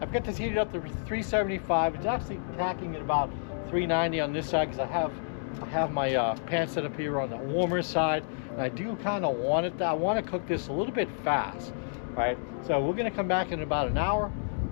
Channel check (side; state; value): right; silent; digital silence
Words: got this heated up to 375. It's actually tacking at about 390 on this side because I have my pan set up here on the warmer side. And I do kind of want it, I want to cook this a little bit fast, right? So we're going to come back in about an hour. I'm